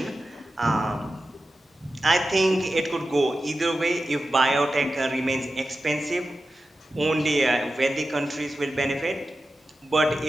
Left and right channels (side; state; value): both; normal; correlation 0.92